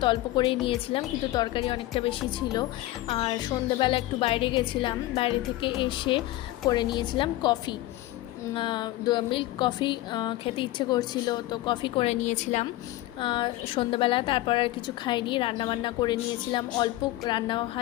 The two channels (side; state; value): right; quieter; 16.8 dB